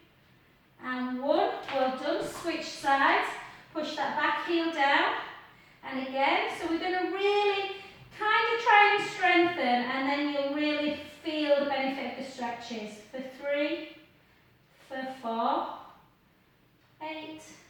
and 1. Well done. Switch sides. Push that back heel down. And again, so we're going to really kind of try and strengthen, and then you'll really feel the benefit of the stretches. For 3, for 4, 8,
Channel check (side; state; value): both; identical; correlation 1.00